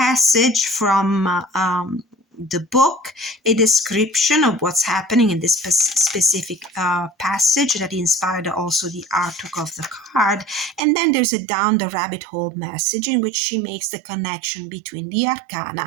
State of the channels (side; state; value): left; drops out; at 10.8 s